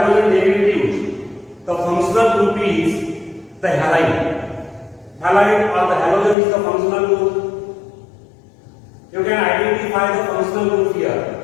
derivatives, the functional group is the halide. Halide or the halogen is the functional group. You can identify the functional group here:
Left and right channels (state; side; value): drops out; right; at 6.4 s